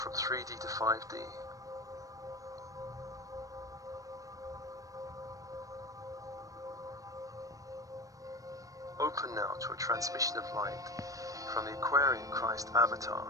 3D to 5D. Open now to a transmission of light from the Aquarian Christ avatar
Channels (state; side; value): late; left; 0.16 ms